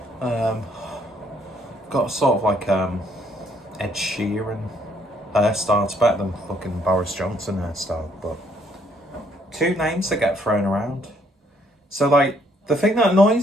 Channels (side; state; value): both; normal; correlation 0.67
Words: Got sort of like Ed Sheeran hairstyle. It's better than fucking Boris Johnson hairstyle, but two names that get thrown around. So like, the thing that